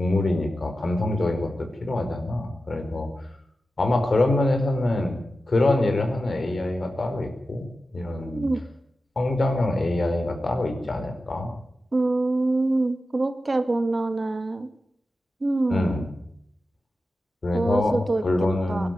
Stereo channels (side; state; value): both; normal; correlation 0.92